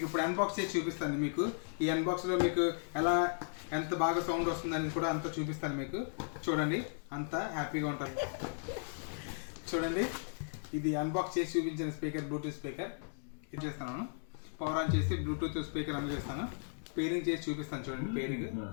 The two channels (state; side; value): silent; right; digital silence